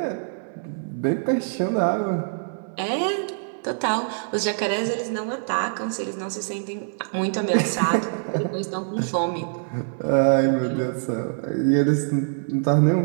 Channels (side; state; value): left; silent; digital silence